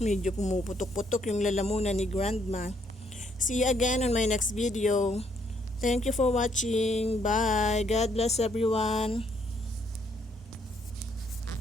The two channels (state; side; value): normal; both; correlation 0.70